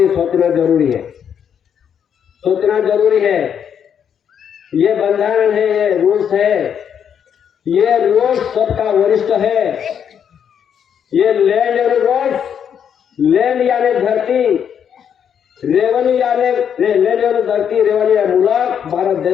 सोचना जरूरी है। ये बंधन है, ये रूल्स है, ये रूल्स सबका वरिष्ठ है। ये लैंड और रूल्स, लैंड यानी धरती, रेवेन्यू यानी लैंड और धरती, रेवेन्यू मुल्क, भारत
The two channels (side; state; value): right; quieter; 8.2 dB